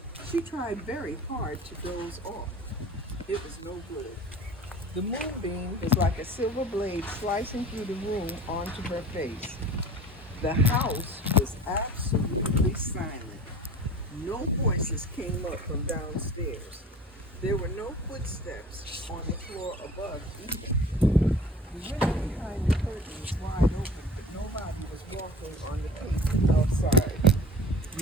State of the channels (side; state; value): both; normal; correlation 0.41